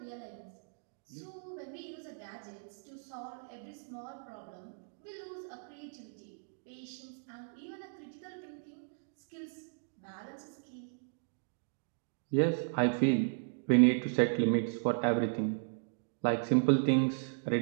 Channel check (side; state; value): left; silent; digital silence